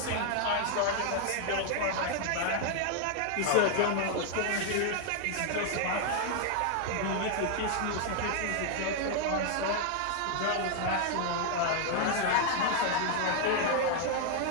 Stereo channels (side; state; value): both; different; correlation 0.00